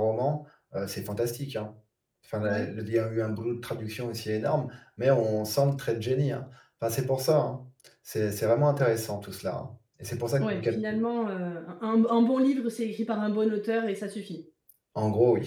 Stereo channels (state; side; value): identical; both; correlation 1.00